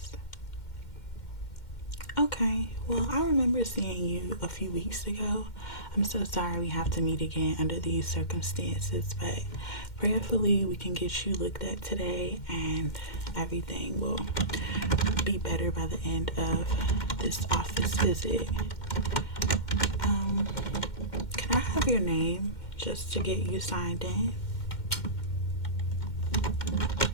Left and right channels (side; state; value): right; late; 2.1 ms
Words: Okay, well, I remember seeing you a few weeks ago. I'm so sorry we have to meet again under these circumstances, but prayerfully we can get you looked at today and everything will be better by the end of this office visit. Can I have your name just to get you signed in?